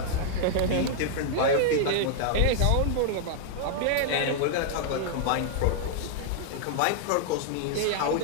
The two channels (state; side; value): different; both; correlation -0.01